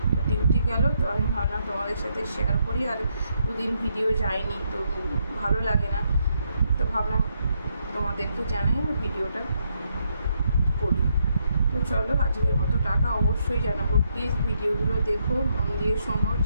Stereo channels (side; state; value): both; inverted; correlation -0.77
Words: তো ডিউটি গেল। তো আমি ভাবলাম তোমাদের সাথে শেয়ার করি, আর 2 দিন ভিডিও যায়নি তো ভালো লাগে না, তো ভাবলাম তোমাদেরকে জানাই আর ভিডিওটা করি। তো চলো আজকের মতো টাটা। অবশ্যই জানাবো, প্লিজ ভিডিওগুলো দেখো, মন দিয়ে শোনো,